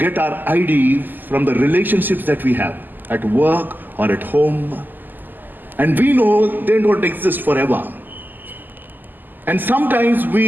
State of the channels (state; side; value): late; left; 0.088 ms